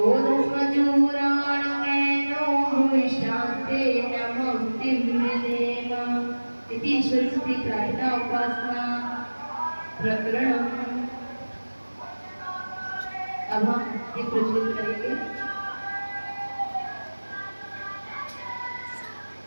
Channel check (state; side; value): inverted; both; correlation -1.00